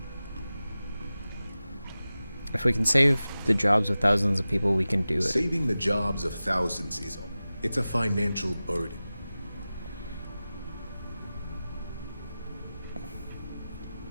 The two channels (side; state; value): both; inverted; correlation -0.96